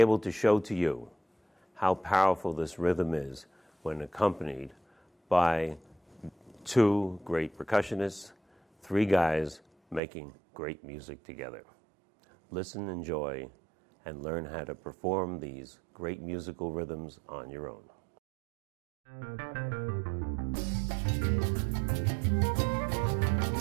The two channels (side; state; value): left; drops out; at 10.0 s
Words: to show to you how powerful this rhythm is when accompanied by two great percussionists, three guys making great music together. Listen, enjoy, and learn how to perform these great musical rhythms on your own.